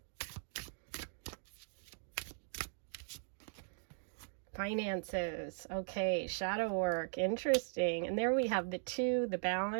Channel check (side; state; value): left; silent; digital silence